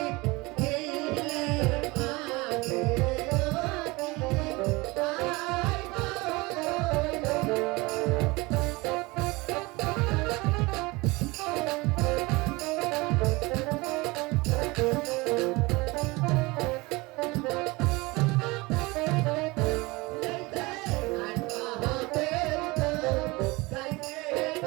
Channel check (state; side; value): quieter; left; 23.5 dB